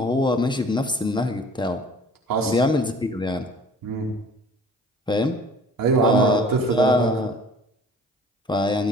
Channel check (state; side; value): normal; both; correlation 0.48